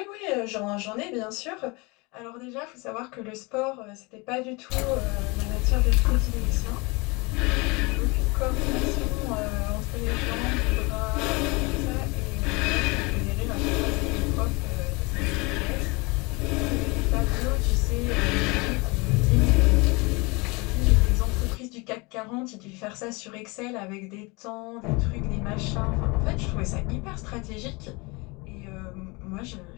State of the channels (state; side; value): quieter; right; 26.8 dB